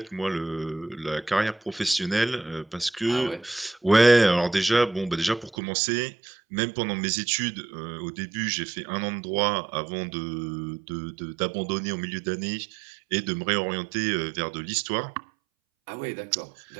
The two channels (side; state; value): left; drops out; at 5.6 s